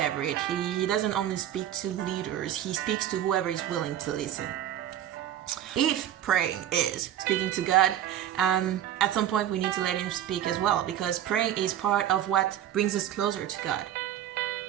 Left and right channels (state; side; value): quieter; left; 11.3 dB